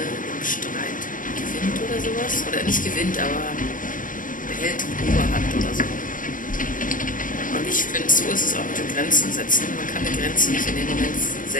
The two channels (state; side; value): late; right; 0.39 ms